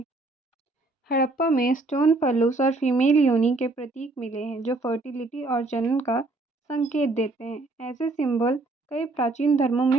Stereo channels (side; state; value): left; quieter; 3.1 dB